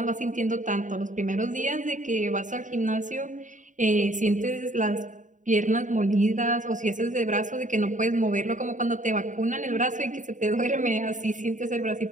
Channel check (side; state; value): left; late; 0.37 ms